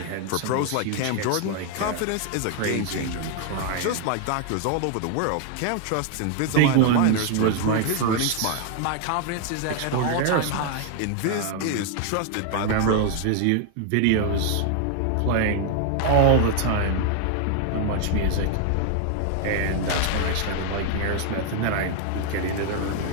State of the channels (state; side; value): different; both; correlation 0.00